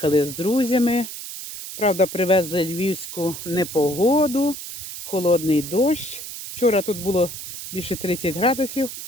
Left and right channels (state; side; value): noise; right; hiss, 9 dB below the sound